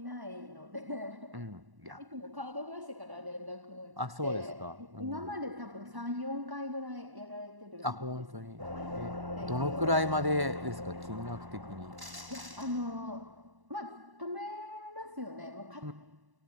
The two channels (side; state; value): left; late; 1.1 ms